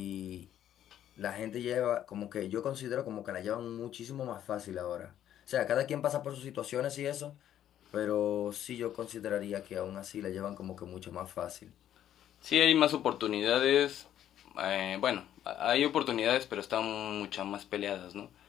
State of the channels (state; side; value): quieter; right; 11.1 dB